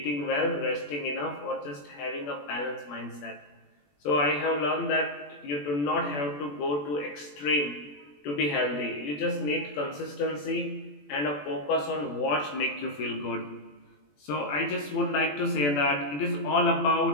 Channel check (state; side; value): late; right; 21 ms